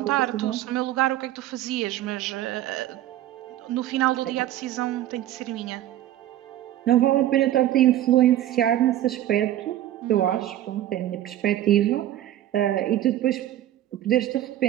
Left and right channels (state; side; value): quieter; left; 12.9 dB